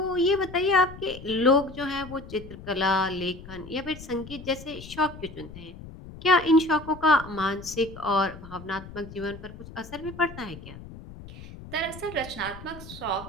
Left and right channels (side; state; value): left; noise; rumble, 15 dB below the sound